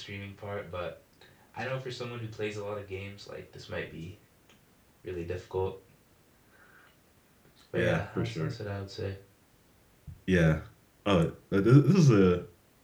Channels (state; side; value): identical; both; correlation 1.00